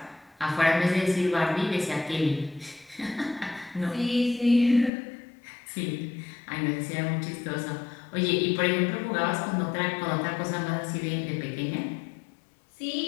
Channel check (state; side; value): drops out; right; at 4.9 s